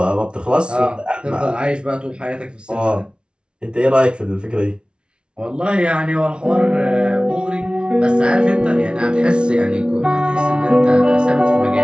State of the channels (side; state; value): left; late; 0.057 ms